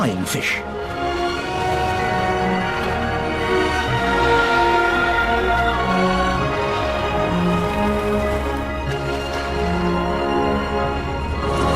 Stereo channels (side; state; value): both; identical; correlation 1.00